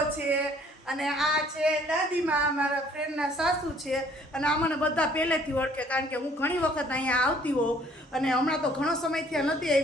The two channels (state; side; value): normal; both; correlation 0.59